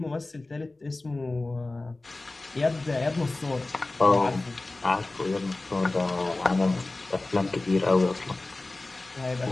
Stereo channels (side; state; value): right; quieter; 3.0 dB